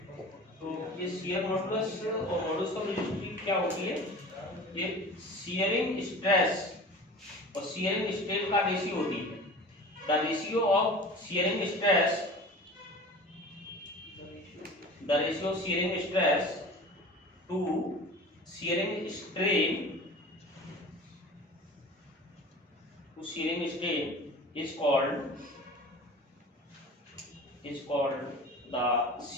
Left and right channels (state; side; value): normal; both; correlation 0.38